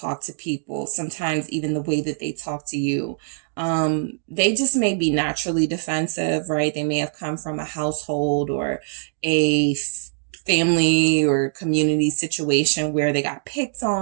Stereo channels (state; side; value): silent; left; digital silence